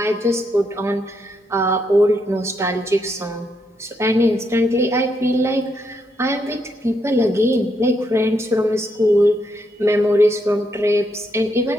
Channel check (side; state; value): both; normal; correlation 0.78